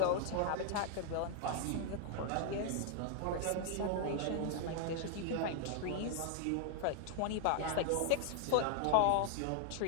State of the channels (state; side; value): different; both; correlation 0.00